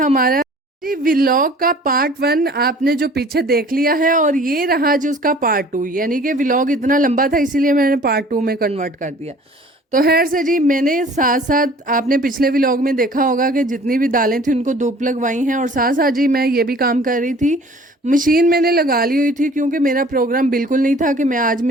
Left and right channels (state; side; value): normal; both; correlation 0.50